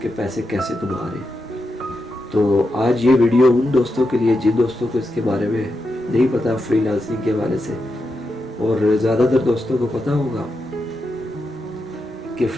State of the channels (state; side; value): normal; both; correlation 0.86